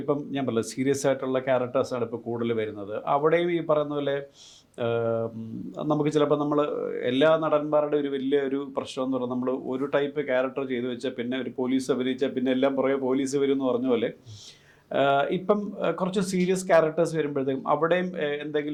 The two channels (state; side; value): identical; both; correlation 1.00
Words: ഇപ്പം ഞാൻ പറഞ്ഞ സീരിയസ് ആയിട്ടുള്ള ക്യാരക്ടേഴ്സാണ് ഇപ്പോൾ കൂടുതൽ വരുന്നത്. അവിടെയും ഈ പറയുന്ന പോലെ നമുക്ക് ചിലപ്പോൾ നമ്മൾ എല്ലാ നടന്മാരുടെ ഒരു വലിയ ഒരു പ്രശ്നം എന്ന് പറഞ്ഞാൽ നമ്മൾ ഒരു ടൈപ്പ് ക്യാരക്ടർ ചെയ്തു വെച്ചാൽ പിന്നെ ഒരു പോലീസ് അഭിനയിച്ചാൽ പിന്നെ എല്ലാം പുറകെ പോലീസ് വരും എന്ന് പറഞ്ഞ പോലെ ഇപ്പം കുറച്ച് സീരിയസ് ക്യാരക്ടേഴ്സ് വരുമ്പോഴത്തേക്കും അവിടെയും